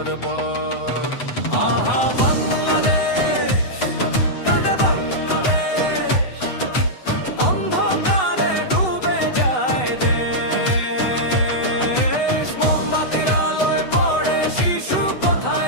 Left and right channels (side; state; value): right; late; 8.0 ms